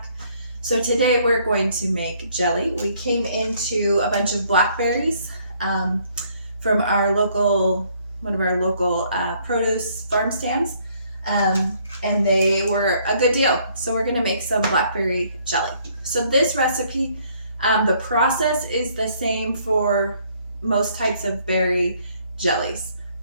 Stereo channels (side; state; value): both; inverted; correlation -0.65